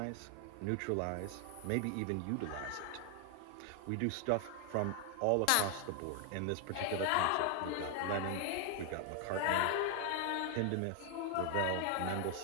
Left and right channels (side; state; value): both; different; correlation 0.00